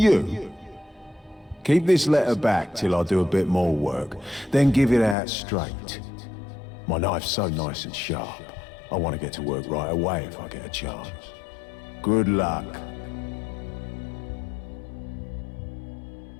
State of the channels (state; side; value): drops out; right; at 5.2 s